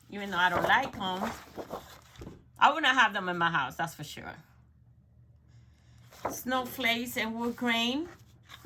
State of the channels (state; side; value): identical; both; correlation 1.00